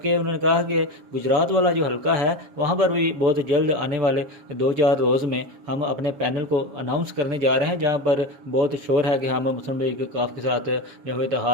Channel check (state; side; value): late; left; 7.3 ms